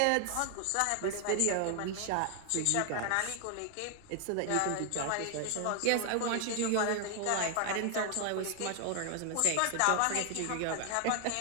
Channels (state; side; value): different; both; correlation 0.00